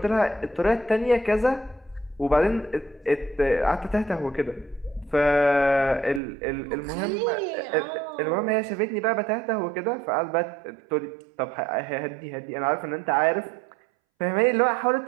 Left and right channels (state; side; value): drops out; left; at 6.2 s